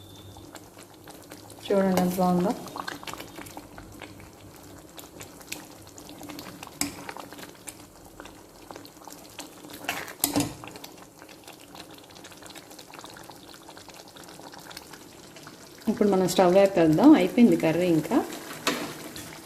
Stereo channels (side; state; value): both; identical; correlation 1.00